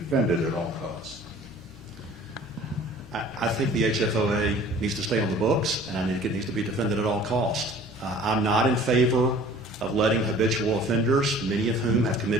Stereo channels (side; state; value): both; normal; correlation 0.48